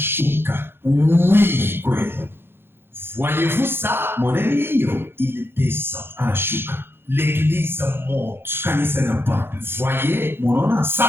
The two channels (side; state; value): left; late; 0.11 ms